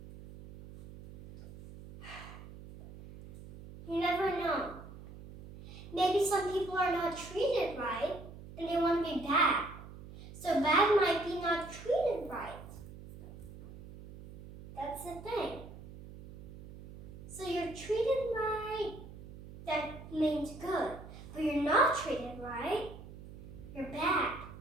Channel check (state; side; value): noise; right; hum, 15 dB below the sound